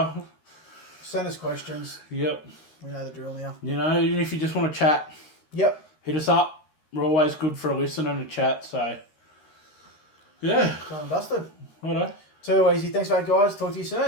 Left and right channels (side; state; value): right; late; 13 ms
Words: Send us questions. Yep. We know the drill now. You know, even if you just want to chat, Yep. hit us up. We're always good for a listen and a chat, so yeah. Done and dusted. Righto. Too easy. Thanks, mate, guys. Talk to you